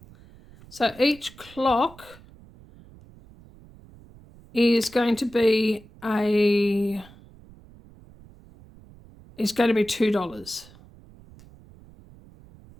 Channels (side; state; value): right; noise; rumble, 23 dB below the sound